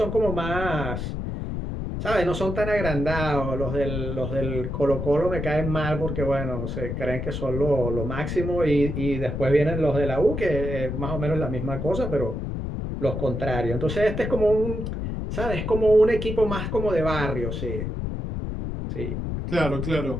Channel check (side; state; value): left; noise; rumble, 4 dB below the sound